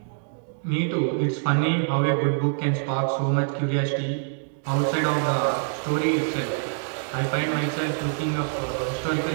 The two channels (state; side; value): silent; left; digital silence